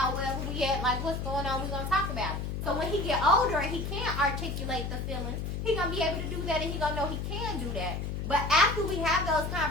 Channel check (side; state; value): left; noise; hum, 3 dB below the sound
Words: wherever we at, like, what's going on, we're going to talk about it. So when he get older and he can't articulate the feelings, he going to be able to do that, and he going to know he can do that. But after we have those